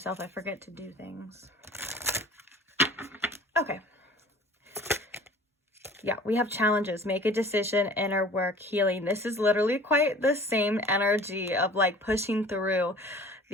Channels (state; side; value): normal; both; correlation 0.47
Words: I forget to do things. Okay. Yeah, we have challenges. Make a decision, inner work, healing. This is literally quite the same energy of like pushing through